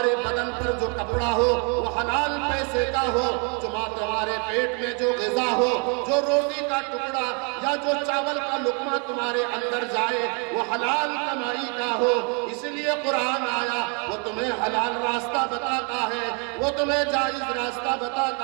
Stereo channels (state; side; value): quieter; left; 36.2 dB